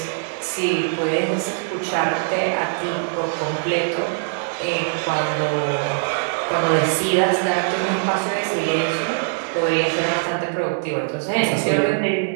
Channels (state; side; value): silent; left; digital silence